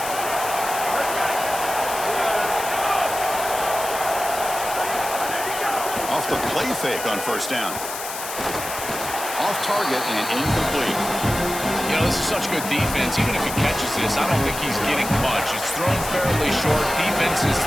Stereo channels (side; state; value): left; noise; hiss, 8 dB below the sound